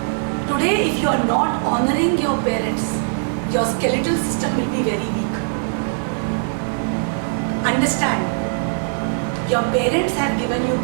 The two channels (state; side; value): silent; left; digital silence